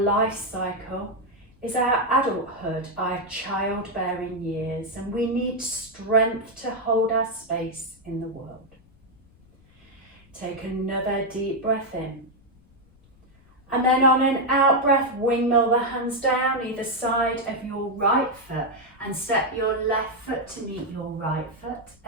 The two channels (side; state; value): left; noise; rumble, 29 dB below the sound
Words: cycle is our adulthood, our childbearing years, and we need strength to hold our space in the world. Take another deep breath in. And then on an out breath, windmill the hands down either side of your right foot and step your left foot to meet your right foot